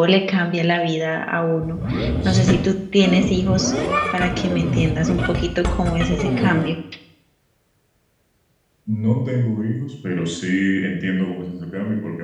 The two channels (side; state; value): both; identical; correlation 1.00